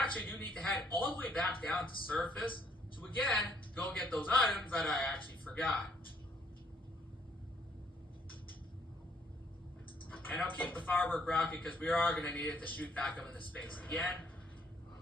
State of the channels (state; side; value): normal; both; correlation 0.67